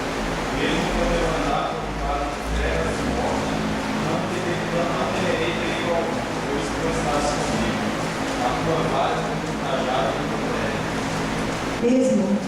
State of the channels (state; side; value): identical; both; correlation 1.00